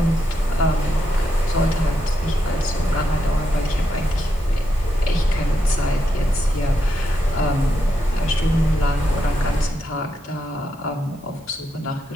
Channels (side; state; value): both; normal; correlation 0.83